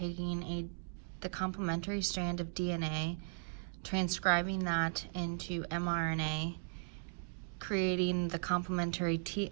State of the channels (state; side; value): silent; left; digital silence